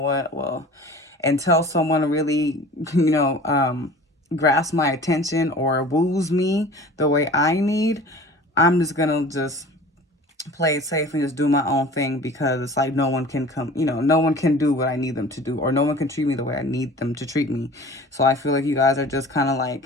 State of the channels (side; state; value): both; normal; correlation 0.42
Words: well, until someone really, grasps my attention or woos me the way I need, I'm just gonna just play it safe and just do my own thing, because it's no one can come, no one can do what I need them to do, or no one can treat me the way I need them to treat me. So I feel like you guys are just kind